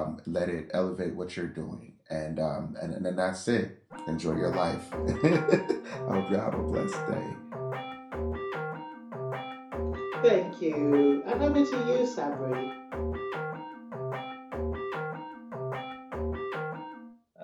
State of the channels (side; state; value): both; identical; correlation 1.00